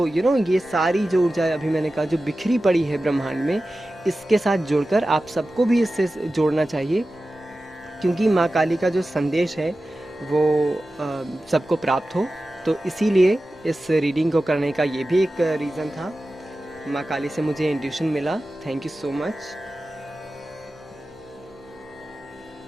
ये सारी जो ऊर्जा अभी मैंने कहा जो बिखरी पड़ी है ब्रह्मांड में, इसके साथ जुड़कर आप सबको भी इससे जोड़ना चाहिए। क्योंकि माँ काली का जो संदेश है वो सबको प्राप्त हो। तो इसीलिए इस रीडिंग को करने का ये भी एक रीज़न था। माँ काली से मुझे इंट्यूशन मिला। Thank you so much.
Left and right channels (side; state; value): both; normal; correlation 0.94